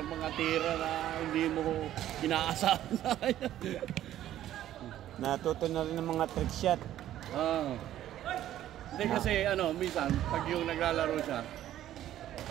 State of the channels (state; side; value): quieter; left; 12.5 dB